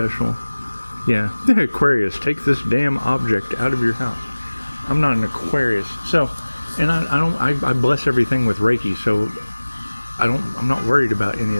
Yeah, Aquarius, take this damn object out of your house. I'm not an Aquarius, so. And I bless everything with Reiki, so I'm not worried about any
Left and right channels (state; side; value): inverted; both; correlation -1.00